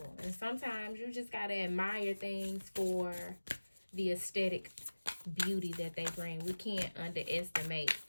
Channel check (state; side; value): inverted; both; correlation -1.00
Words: And sometimes you just got to admire things for the aesthetic beauty that they bring. We can't underestimate